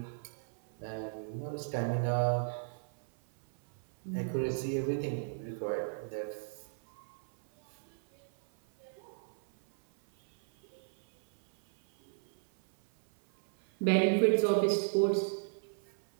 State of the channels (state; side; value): silent; left; 55 dB below the other